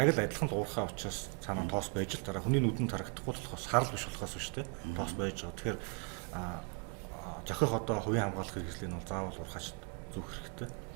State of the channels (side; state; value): left; quieter; 36.1 dB